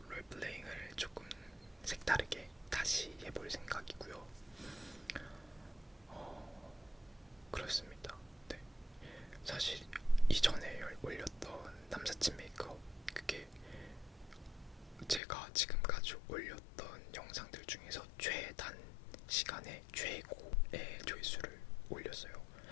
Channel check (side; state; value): right; drops out; at 15.2 s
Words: 롤플레잉을 조금 색다르게 다시 해볼 생각이고요. 그렇습니다. 네. 사실 이전에 올렸던 남사친 메이크업, 그게 제가 지금까지 올렸던 영상들 중에서 최단 시간에 최고의 조회수를 올렸어요.